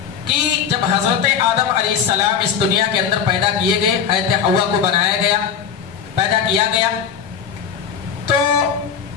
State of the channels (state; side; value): quieter; right; 7.5 dB